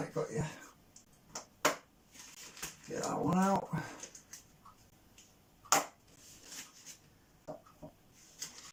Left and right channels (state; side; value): identical; both; correlation 1.00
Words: got you. Get that one out.